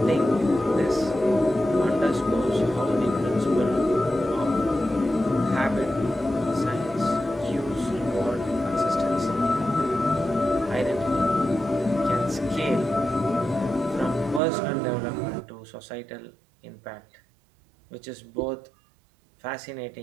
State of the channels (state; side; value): drops out; left; at 14.4 s